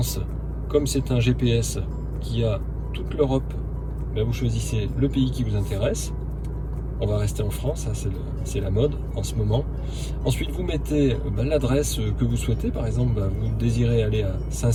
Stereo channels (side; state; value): both; identical; correlation 1.00